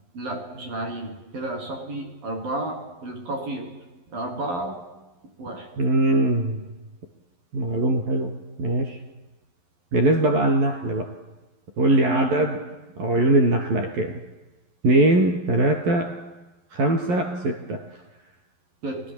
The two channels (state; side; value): late; left; 11 ms